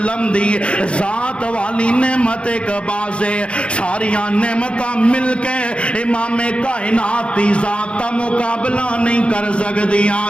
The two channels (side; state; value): right; late; 0.058 ms